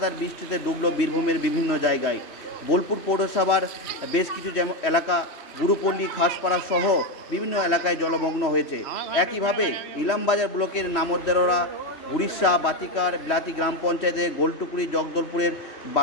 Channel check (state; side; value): late; right; 3.1 ms